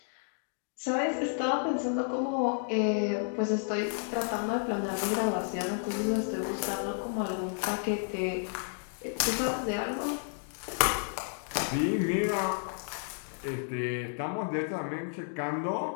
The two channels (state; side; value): silent; right; digital silence